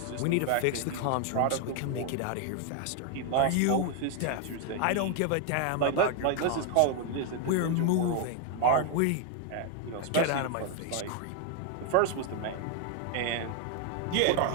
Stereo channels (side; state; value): both; different; correlation 0.00